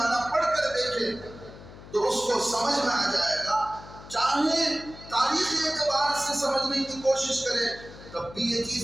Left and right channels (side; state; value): left; noise; hum, 17 dB below the sound